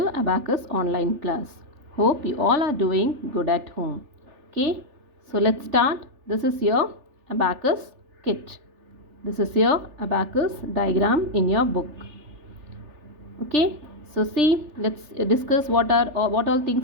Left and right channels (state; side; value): late; left; 3.4 ms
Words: Abacus online class. Hope you all are doing good at home. Okay, so let's start. This is your Abacus kit. This is your Abacus diagram in your book. Okay, so see, let's discuss what all